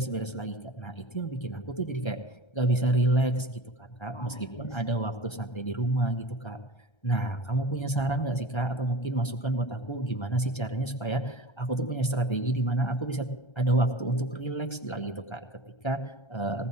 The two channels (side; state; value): right; late; 1.3 ms